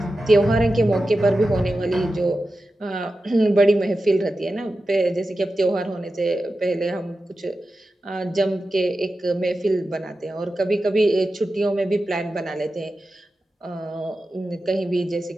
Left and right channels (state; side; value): normal; both; correlation 0.92